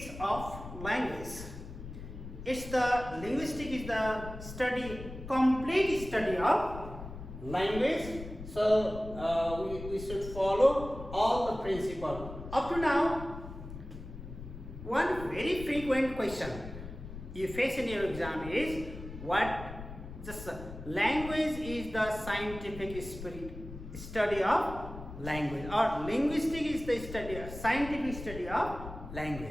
of language. It's the linguistics is the study, complete study of language. So we should follow all the principle. Up to now, one very frequent question you face in your exam is what? Just language is the scientific study of language, or linguistics is the study, scientific study of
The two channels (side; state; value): left; noise; rumble, 11 dB below the sound